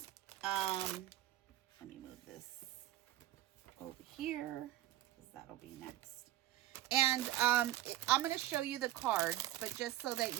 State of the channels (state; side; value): quieter; left; 14.4 dB